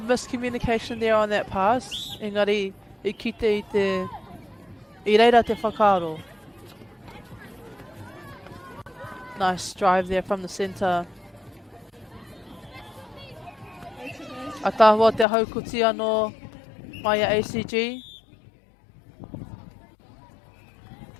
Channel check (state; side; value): drops out; right; at 15.2 s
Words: there on that pass. Engari, I kite i reira te whakaro. Nice drive there from the centre. Atahua te haukuti anō mai a ACG.